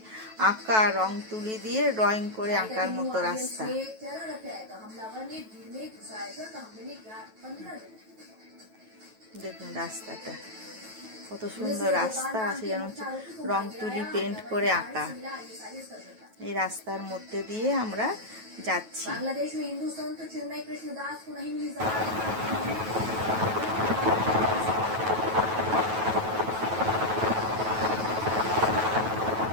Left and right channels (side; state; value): left; late; 9.2 ms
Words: আঁকা, রং তুলি দিয়ে ড্রয়িং করে আঁকার মতো রাস্তা। দেখুন রাস্তাটা কত সুন্দর রাস্তা আছে, যেন হচ্ছে রং তুলি পেন্ট করে আঁকা। এই রাস্তার মধ্যে দিয়ে আমরা যাচ্ছি।